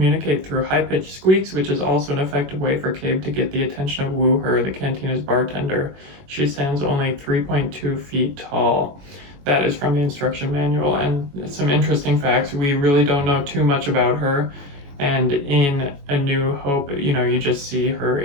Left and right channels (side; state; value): left; late; 21 ms